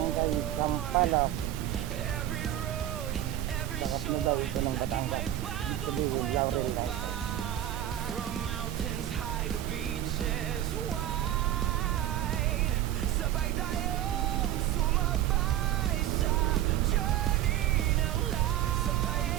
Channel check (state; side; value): quieter; left; 12.4 dB